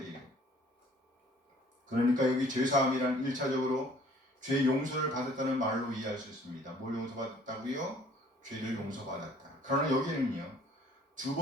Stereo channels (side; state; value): both; normal; correlation 0.56